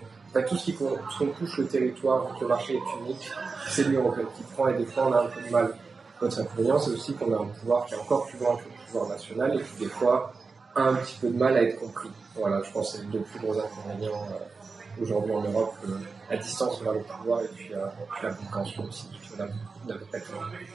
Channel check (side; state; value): left; quieter; 4.4 dB